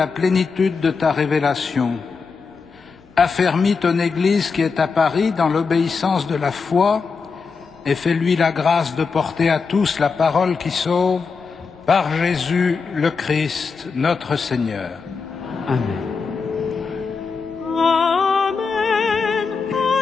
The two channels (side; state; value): right; quieter; 5.1 dB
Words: plénitude de ta révélation. Affermis ton Église qui est à Paris dans l'obéissance de la foi et fais-lui la grâce de porter à tous la parole qui sauve par Jésus le Christ, notre Seigneur. Amen. Amen.